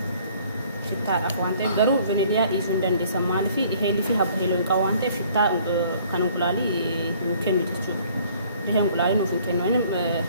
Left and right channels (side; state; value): both; inverted; correlation -0.58